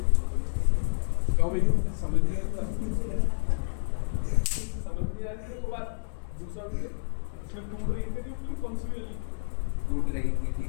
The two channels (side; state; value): right; silent; digital silence